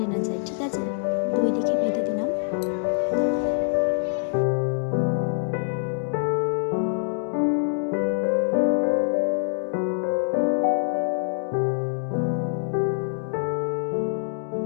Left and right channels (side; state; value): right; silent; digital silence